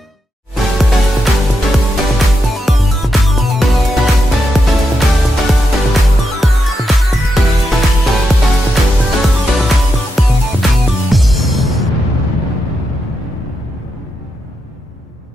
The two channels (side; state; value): both; normal; correlation 0.85